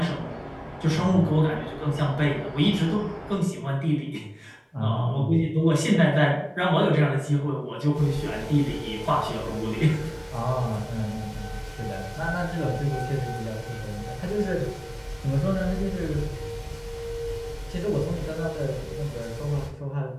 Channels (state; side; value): identical; both; correlation 1.00